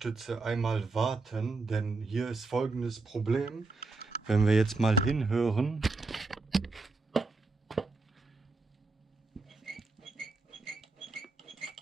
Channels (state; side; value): quieter; left; 3.6 dB